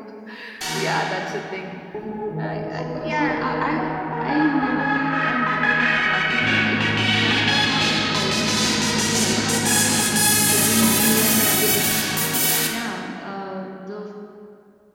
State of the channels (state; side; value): identical; both; correlation 1.00